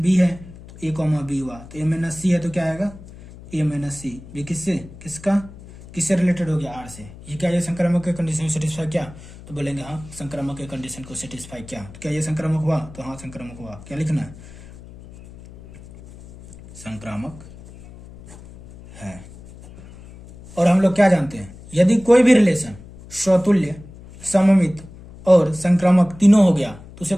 है तो ए कॉमा बी हुआ, तो ए माइनस सी है तो क्या आएगा, ए माइनस सी। बी किससे, किससे रिलेटेड हो गया, आर से। ये क्या, ये संक्रामक के कंडीशन सेटिस्फाई क्या, तो बोलेंगे हाँ संक्रामक के कंडीशन को सेटिस्फाई किया। तो क्या ये संक्रामक हुआ, तो हाँ संक्रामक हुआ। क्या लिखना है, संक्रामक है। और हम लोग क्या जानते हैं, यदि कोई भी रिलेशन स्वतुल्य, सममित और संक्रामक तीनों हो गया तो उसे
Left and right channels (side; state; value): left; noise; hum, 18 dB below the sound